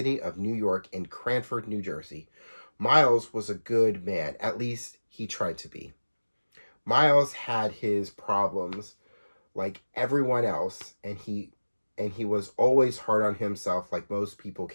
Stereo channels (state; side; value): inverted; both; correlation -1.00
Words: of New York in Cranford, New Jersey. Miles was a good man, at least he tried to be. Miles had his problems like everyone else, and he was always hard on himself like most people